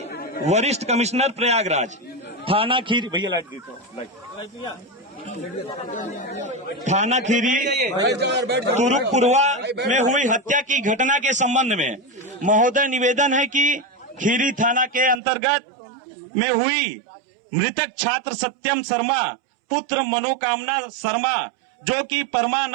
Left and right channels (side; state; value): left; drops out; at 15.2 s